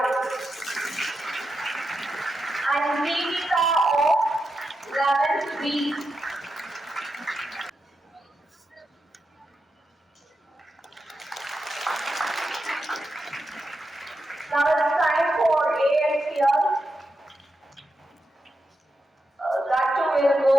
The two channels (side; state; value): both; normal; correlation 0.87